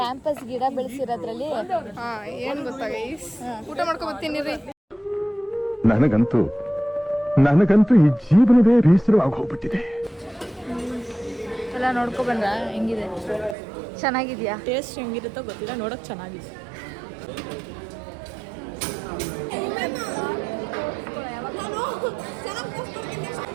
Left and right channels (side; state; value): left; drops out; at 13.6 s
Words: ಗಿಡ ಬೆಳೆಸಿರೋದ್ರಲ್ಲಿ ಏನು ಗೊತ್ತಾ ಗೈಸ್, ಊಟ ಮಾಡ್ಕೊ ಬರ್ತೀನಿ ರೀ. ನನಗಂತೂ ಈ ಜೀವನವೇ ಬೇಸರವಾಗಿ ಹೋಗ್ಬಿಟ್ಟಿದೆ. ಎಲ್ಲ ನೋಡ್ಕೊ ಬಂದ್ರ ಹೆಂಗಿದೆ? ಚೆನ್ನಾಗಿದ್ಯಾ? ಟೇಸ್ಟ್ ಹೆಂಗಿರುತ್ತೋ ಗೊತ್ತಿಲ್ಲ, ನೋಡಕ್ ಚೆನ್ನಾಗಿದೆ.